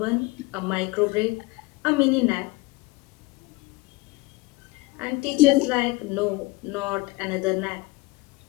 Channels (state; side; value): quieter; right; 22.5 dB